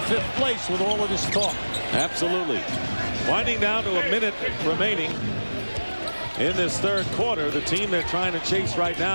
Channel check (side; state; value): both; inverted; correlation -1.00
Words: place with all of this talk. Absolutely. Winding down to a minute remaining in this 3rd quarter. The team they're trying to chase right